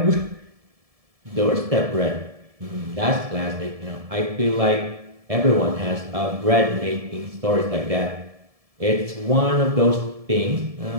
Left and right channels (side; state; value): left; late; 1.7 ms